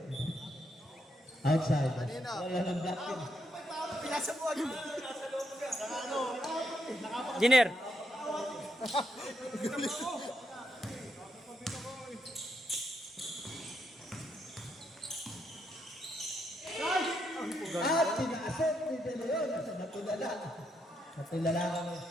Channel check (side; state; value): both; normal; correlation 0.79